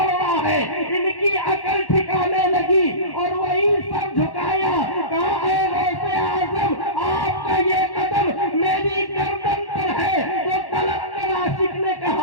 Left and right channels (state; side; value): late; right; 1.1 ms